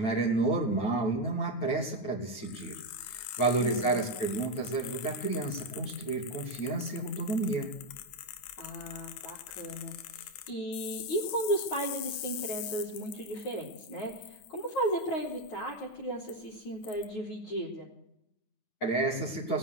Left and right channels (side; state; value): right; late; 9.5 ms